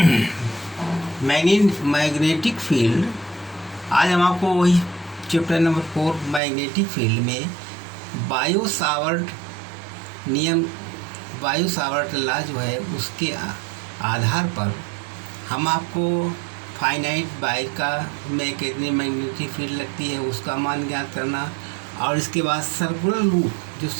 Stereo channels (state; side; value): drops out; left; at 6.4 s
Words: मैग्नेटिक फील्ड, आज हम आपको वही चैप्टर नंबर 4 मैग्नेटिक फील्ड में बायो सावर्ट नियम, बायो सावर्ट लॉ जो है उसके आधार पर हम आपको फाइनाइट बाई का में कितनी मैग्नेटिक फील्ड लगती है उसका मान ज्ञात करना, और इसके बाद सर्कुलर लूप, जो